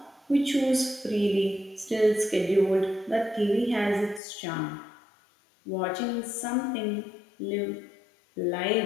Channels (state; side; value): drops out; right; at 4.2 s